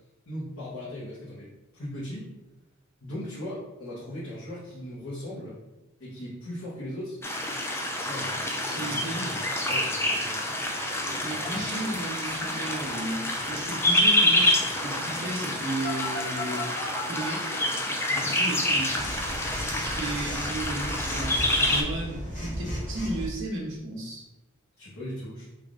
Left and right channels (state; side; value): normal; both; correlation -0.01